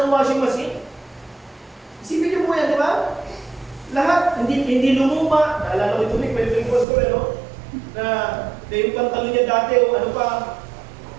ng washing machine. Isipin niyo po yan, di ba? Lahat, hindi lumuma. Naalala ko ito, may pastor, no? Na yung pantalon niya dati, o ano pa,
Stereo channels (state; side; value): drops out; left; at 6.9 s